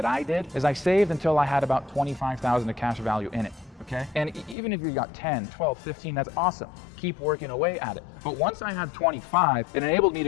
I did is I saved until I had about $25,000 of cash value in it. Okay. And even if you got 10, 12, 15, that's awesome. Keep working away at it. But once I had 25, it enabled me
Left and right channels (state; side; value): drops out; right; at 4.5 s